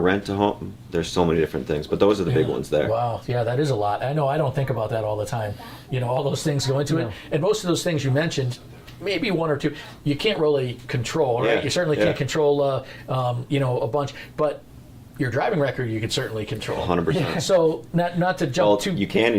a home. There's so many different things, but those are the big ones there. Wow, yeah, that is a lot. I know I don't think about that all the time. All those things go into it. And most of those things you mentioned, maybe one or two, you can't really control, right? Yeah, You certainly can't control, a bunch, but your driving record you could certainly control. 100%. So not to jump too. You can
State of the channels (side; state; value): both; identical; correlation 1.00